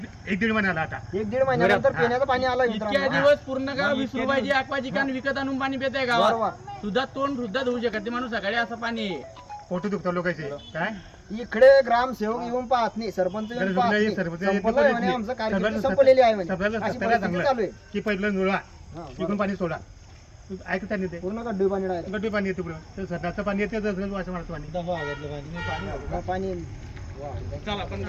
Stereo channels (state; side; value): identical; both; correlation 1.00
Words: 1-1.5 महिन्याला आता 1-1.5 महिन्यानंतर पिण्याचं पाणी आलं इतक्या दिवस पूर्ण गाव 20 रुपयाची aqua chicken विकत आणून पाणी पित आहे गावात सुद्धा तोंड सुद्धा धुवू शकत ते माणूस सकाळी असं पाणी आहे फोटो दुखतात लोकांचे काय इकडे ग्रामसेवक येऊन पाहत नाही, सरपंच येऊन गरज पाहत नाही, नाही. सरपंच संपलं येत आहे म्हणे, नाही. आमचं कार्यक्रम सगळ्याला संपलेली आहे म्हणे. सगळ्याला अशी सगळ्याला परिस्थिती चांगलं चालू आहे. की पहिलं जोडा हा, इकडून पाणी सोडा ऐकता नाही ते पूर्ण गड्डू पाणी डायरेक्ट. गड्डी पाणी येते पुढं ते सध्याचं पाणी येते असं मारतं पाणी पाणी वा. चला पण